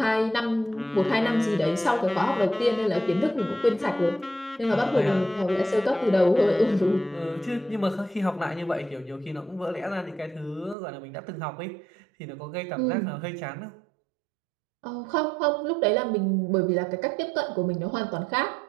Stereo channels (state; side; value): drops out; left; at 10.8 s